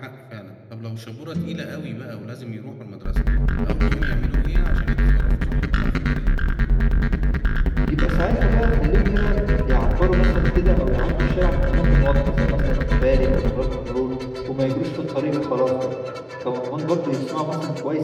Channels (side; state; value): both; identical; correlation 1.00